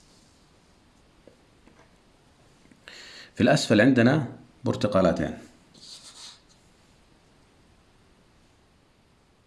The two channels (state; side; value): identical; both; correlation 1.00